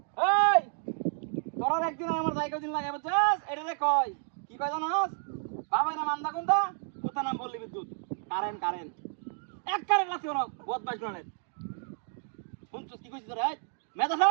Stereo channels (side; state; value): left; silent; digital silence